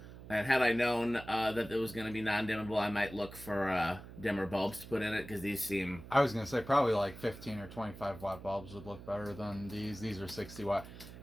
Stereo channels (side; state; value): right; noise; hum, 15 dB below the sound